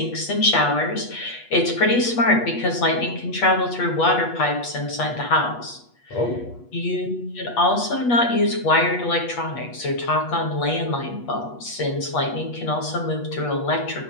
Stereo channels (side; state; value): right; late; 8.3 ms